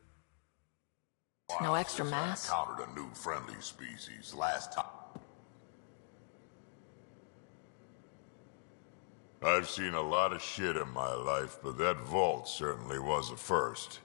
No extra mass. I encountered a new friendly species last time. I've seen a lot of shit in my life, but that vault certainly was a first.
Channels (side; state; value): right; silent; digital silence